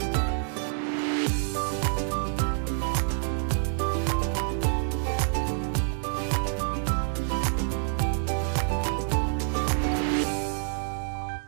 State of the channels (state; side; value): silent; left; digital silence